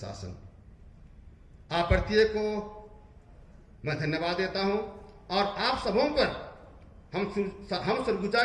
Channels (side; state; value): both; identical; correlation 1.00